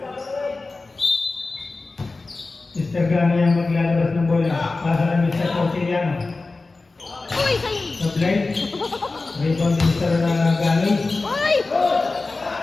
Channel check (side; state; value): right; quieter; 3.6 dB